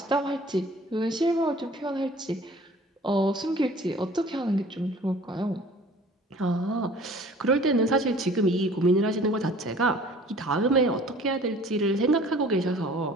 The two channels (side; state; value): both; normal; correlation 0.49